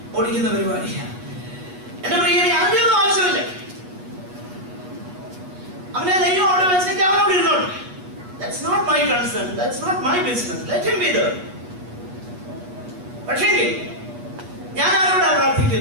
ഓടിക്കുന്ന പരിപാടിയാണ്. എന്റെ പ്രിയനെ അതിനൊന്നും ആവശ്യമില്ല. അവനെ ദൈവം അവിടെ വെച്ചേക്ക്, അവനോട് ഇരുന്നോട്ടെ. That's not my concern, that's not my business, let him be there. പക്ഷേ ഞാൻ ആരോടാണ്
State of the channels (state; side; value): late; left; 8.2 ms